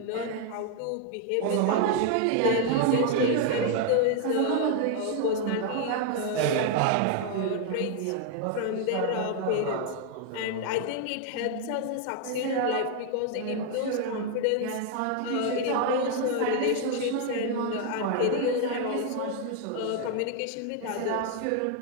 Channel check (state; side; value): different; both; correlation 0.00